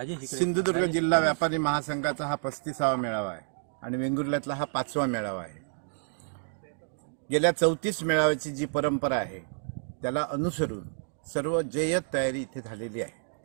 सिंधुदुर्ग जिल्हा व्यापारी महासंघाचा हा 35वा मेळावा आहे आणि वेंगुर्ल्यातला हा 5वा मेळावा आहे. गेल्या 34 मेळाव्याची जी परंपरा आहे त्याला अनुसरून सर्व जय्यत तयारी इथे झालेली आहे.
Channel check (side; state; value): left; silent; digital silence